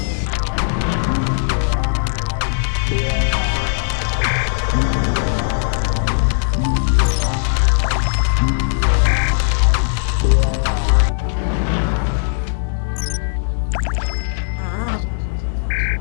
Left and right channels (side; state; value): right; silent; digital silence